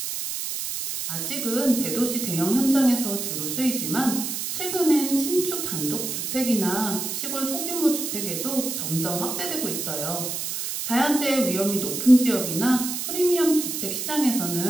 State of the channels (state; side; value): noise; right; hiss, 4 dB below the sound